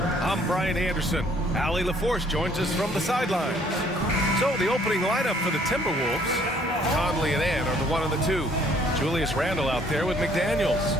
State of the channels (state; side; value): normal; both; correlation 0.61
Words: I'm Brian Anderson. Allie LaForce joins us from the sidelines. So the opening lineup for the Timberwolves, Conley and Ann are the 1 and the 2. Julius Randle out there with McDaniels.